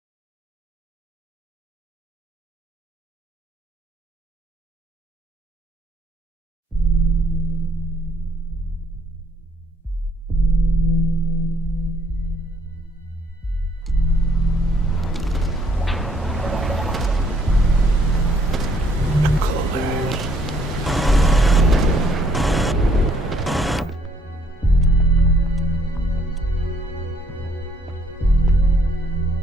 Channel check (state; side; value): normal; both; correlation 0.67